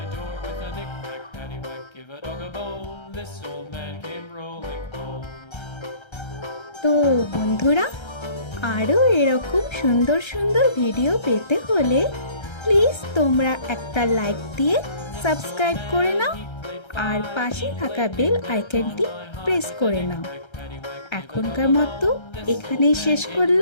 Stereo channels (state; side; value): late; right; 1.3 ms